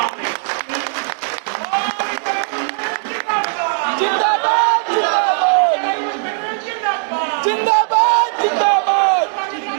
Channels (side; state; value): left; silent; 58 dB below the other